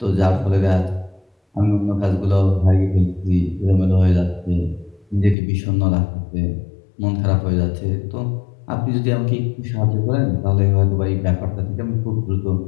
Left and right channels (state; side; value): drops out; right; at 5.4 s